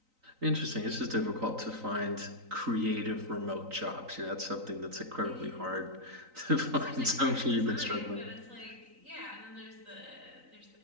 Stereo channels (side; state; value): left; late; 3.9 ms